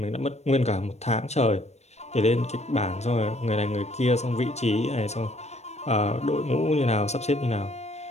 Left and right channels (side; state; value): right; late; 0.32 ms